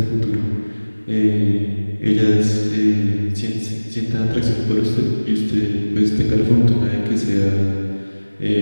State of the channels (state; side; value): inverted; both; correlation -1.00